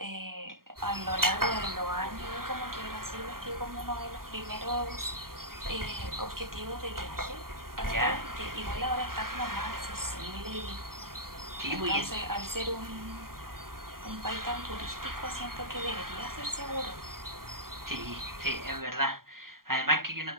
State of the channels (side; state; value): left; late; 0.92 ms